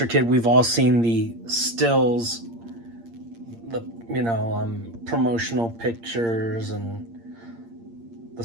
kid, we've all seen the stills, the, promotional pictures and the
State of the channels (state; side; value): late; left; 8.7 ms